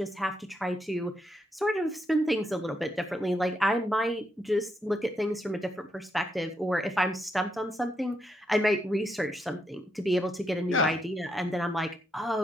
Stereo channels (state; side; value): normal; both; correlation 0.80